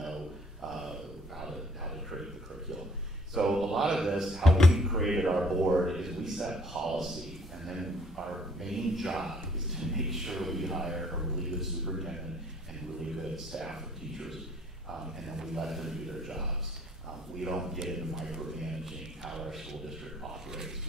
how to create the curriculum. So a lot of this, how we created our board, is we set policy, and then our main job is to make sure we hire a really good superintendent and really good staff of teachers, and then we let them do their jobs. We don't get into micromanaging how our school district operates.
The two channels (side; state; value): both; normal; correlation 0.60